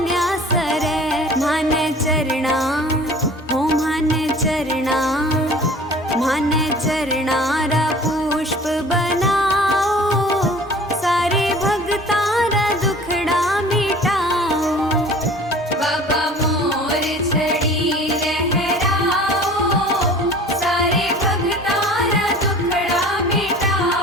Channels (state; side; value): normal; both; correlation 0.45